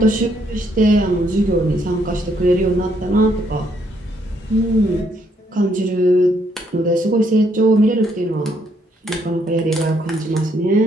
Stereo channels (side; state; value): both; normal; correlation 0.71